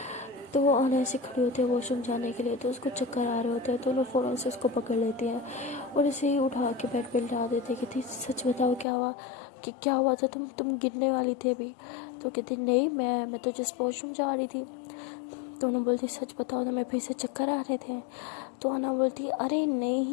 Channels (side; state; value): right; drops out; at 8.8 s